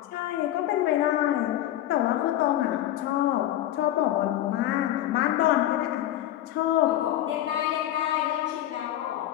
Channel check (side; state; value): right; quieter; 13.2 dB